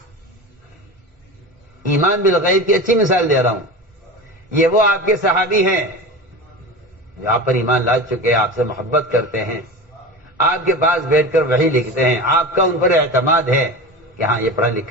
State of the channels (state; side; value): normal; both; correlation 0.29